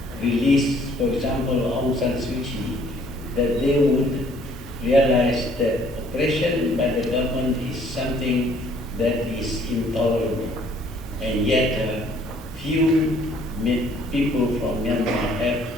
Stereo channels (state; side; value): normal; both; correlation 0.60